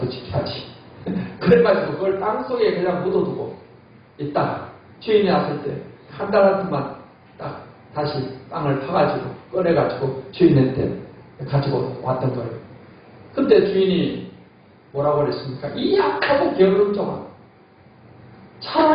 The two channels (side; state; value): both; identical; correlation 1.00